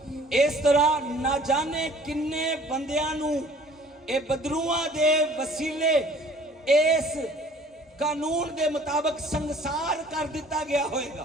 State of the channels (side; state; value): both; normal; correlation 0.52